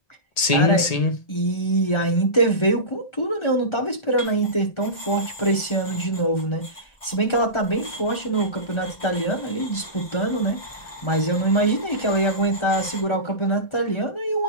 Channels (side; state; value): right; late; 1.4 ms